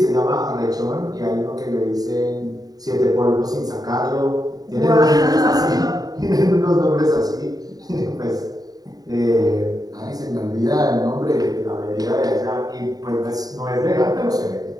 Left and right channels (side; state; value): left; late; 0.18 ms